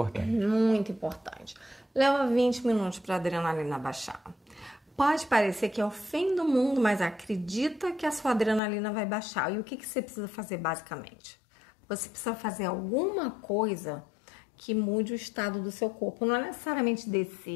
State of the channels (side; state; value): right; drops out; at 8.6 s